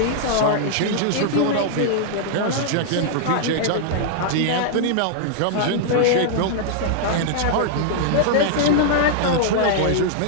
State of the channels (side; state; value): both; different; correlation -0.01